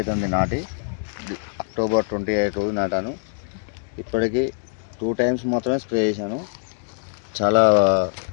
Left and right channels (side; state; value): right; silent; 63 dB below the other